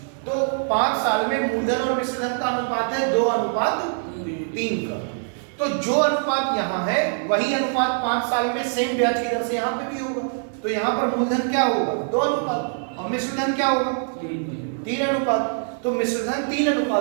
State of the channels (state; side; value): silent; left; digital silence